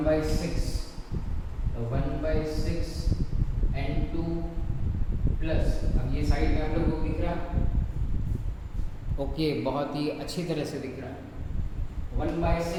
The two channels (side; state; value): both; identical; correlation 1.00